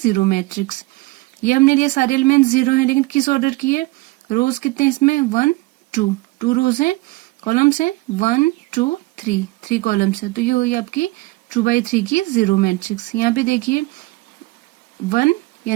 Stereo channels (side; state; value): left; quieter; 21.6 dB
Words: मैट्रिक्स। ये हमने लिया सारे एलिमेंट जीरो हैं लेकिन किस ऑर्डर की है, रोज कितने हैं इसमें 1 2 रोज हैं, कॉलम्स हैं 1 2 3 कॉलम्स है, तो ये हुई आपकी 2/3 की जीरो मैट्रिक्स। यहाँ पे देखिए 1